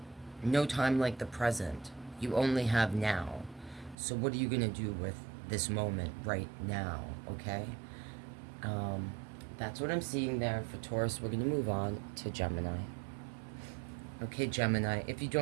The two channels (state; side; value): drops out; left; at 4.0 s